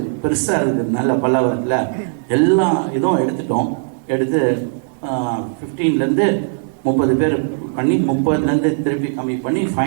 பெருசாக இருக்கிறதுனால பல்லாவரத்தில் எல்லா இதுவும் எடுத்து 15லேருந்து 30 பேர் பண்ணி 30லேருந்து திருப்பி கம்மி பண்ணி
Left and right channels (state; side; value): silent; left; digital silence